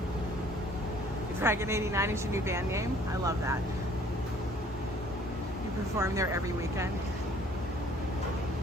Dragon 89 is your new band name? I love that. You perform there every weekend.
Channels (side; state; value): both; normal; correlation 0.57